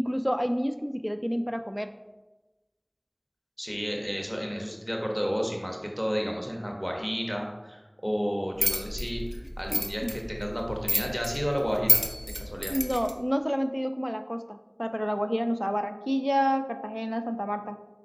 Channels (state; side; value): identical; both; correlation 1.00